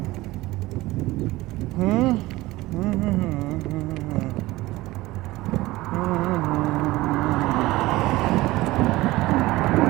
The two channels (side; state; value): left; quieter; 18.8 dB